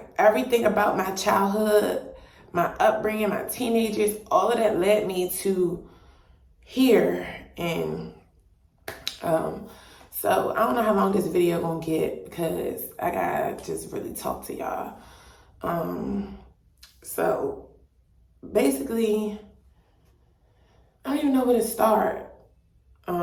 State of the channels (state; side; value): identical; both; correlation 1.00